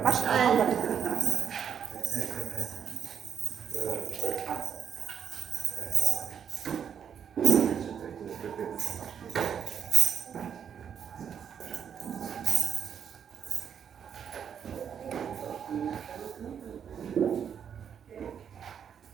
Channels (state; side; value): quieter; left; 8.0 dB